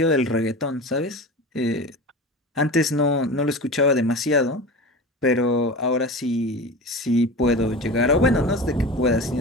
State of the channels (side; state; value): both; normal; correlation 0.31